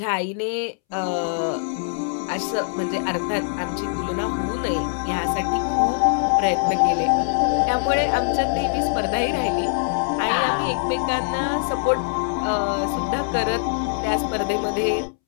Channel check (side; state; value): right; silent; 64 dB below the other